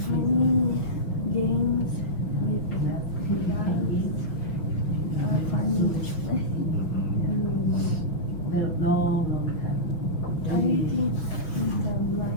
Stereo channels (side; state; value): right; late; 5.9 ms